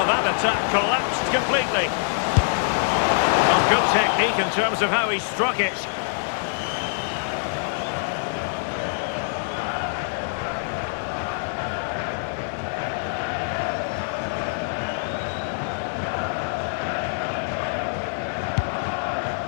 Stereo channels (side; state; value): right; silent; 56 dB below the other